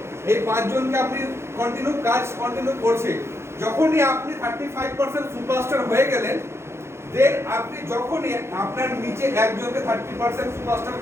এই 5 জনকে আপনি কন্টিনিউ করছে। যখনই আপনি 35% সুপারস্টার হয়ে গেলেন, দেন আপনি যখনই আপনার নিচে একজনকে 30% সুপারস্টার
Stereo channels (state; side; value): late; left; 0.13 ms